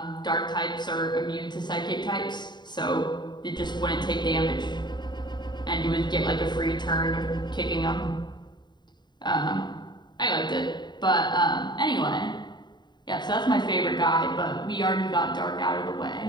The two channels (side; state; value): right; late; 0.21 ms